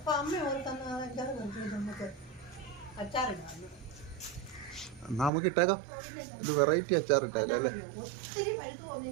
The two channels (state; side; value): drops out; left; at 5.3 s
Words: അമ്മ ഓർ തന്ന അച്ചാറ് നമുക്ക് അച്ചാറിടാം. എന്നാ നമുക്ക് ഇട്ടേക്കാം, ഒരു വെറൈറ്റി അച്ചാർ ഇട്ടേക്കാം അല്ലേ? ഒത്തിരി പഴുത്ത്